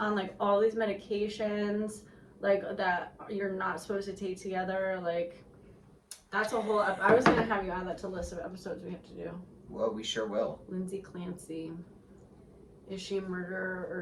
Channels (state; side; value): identical; both; correlation 1.00